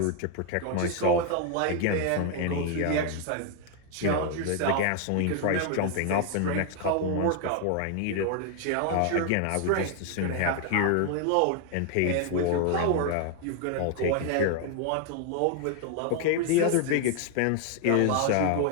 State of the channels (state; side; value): different; both; correlation 0.00